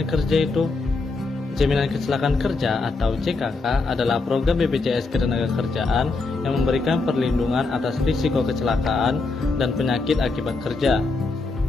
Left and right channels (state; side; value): quieter; right; 3.7 dB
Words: kerja itu? Jaminan kecelakaan kerja atau JKK adalah program BPJS Ketenagakerjaan yang memberikan perlindungan atas risiko kecelakaan dan penyakit akibat kerja.